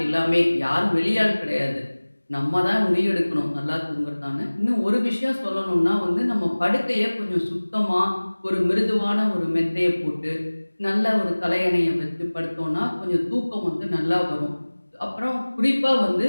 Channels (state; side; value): inverted; both; correlation -1.00